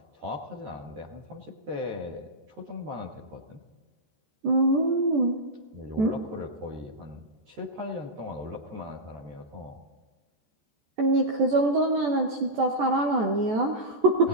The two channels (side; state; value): left; late; 14 ms